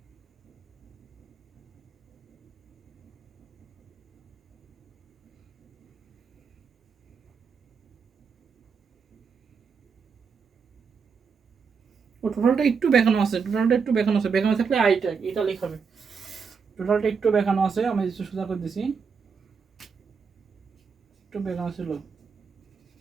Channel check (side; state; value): left; quieter; 5.7 dB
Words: ও টোটালটা একটু দেখানো আছে, টোটালটা একটু দেখানো আছে, দেখানো থাকলে আইটা এটা লেখাবে। টোটালটা একটু দেখানো আছে, আমি সোজা করে দিছি, একটু দেখানো ছিল